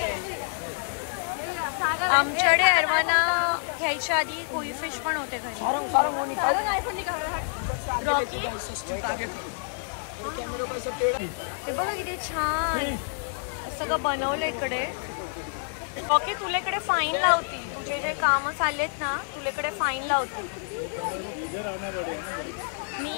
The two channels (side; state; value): right; silent; digital silence